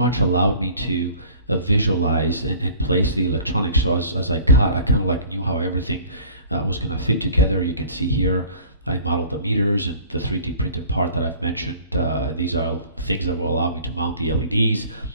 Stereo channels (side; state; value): both; inverted; correlation -0.47